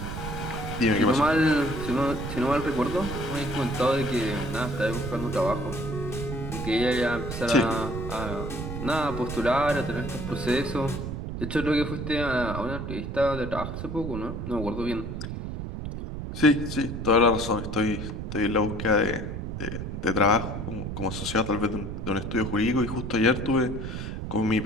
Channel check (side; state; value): right; noise; rumble, 6 dB below the sound